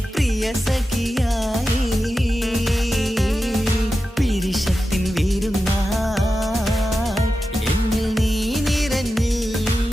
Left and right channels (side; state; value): both; normal; correlation 0.92